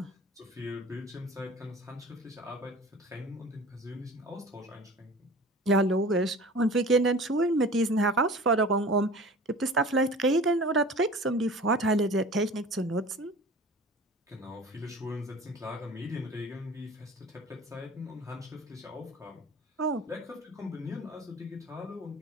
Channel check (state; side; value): normal; both; correlation 0.41